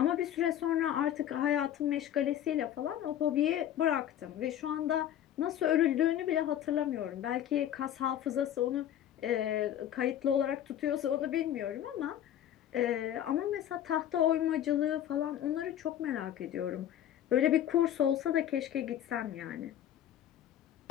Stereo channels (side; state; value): right; quieter; 11.0 dB